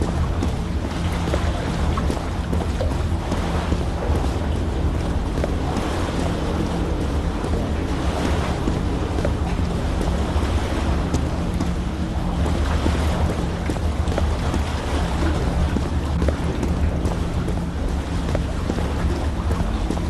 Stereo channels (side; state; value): both; identical; correlation 1.00